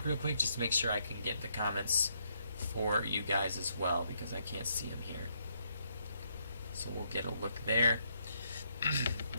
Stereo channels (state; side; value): inverted; both; correlation -0.74